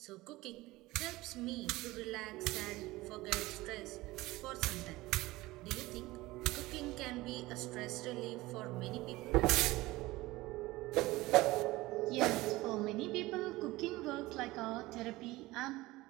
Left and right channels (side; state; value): left; quieter; 19.4 dB